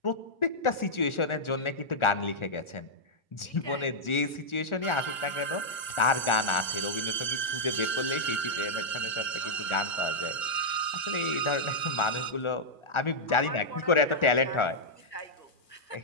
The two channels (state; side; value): late; right; 1.4 ms